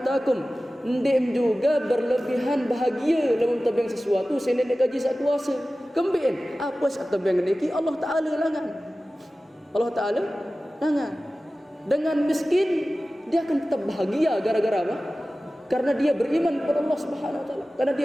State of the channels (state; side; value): normal; both; correlation 0.96